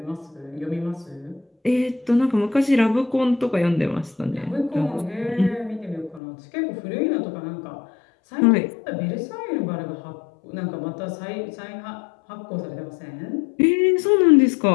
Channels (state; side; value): drops out; right; at 6.2 s